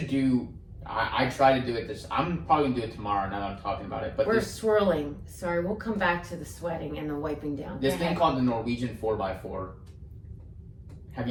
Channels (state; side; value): identical; both; correlation 1.00